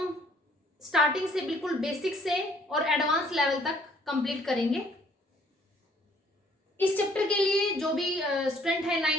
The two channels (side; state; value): both; normal; correlation 0.62